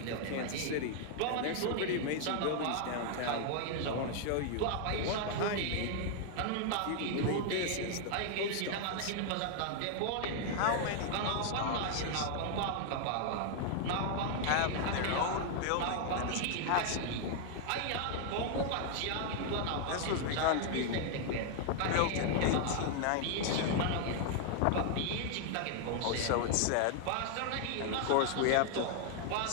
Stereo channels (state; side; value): different; both; correlation 0.00